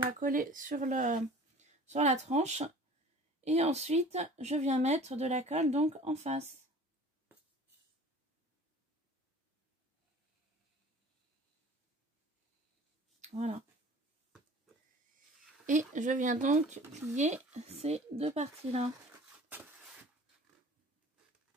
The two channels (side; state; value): both; normal; correlation 0.44